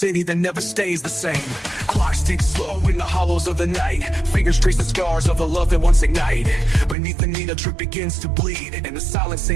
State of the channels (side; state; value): left; drops out; at 7.0 s